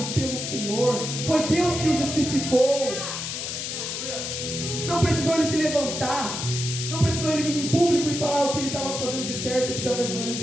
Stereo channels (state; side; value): noise; left; hiss, 4 dB below the sound